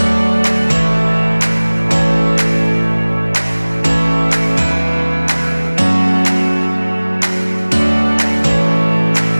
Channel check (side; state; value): both; inverted; correlation -1.00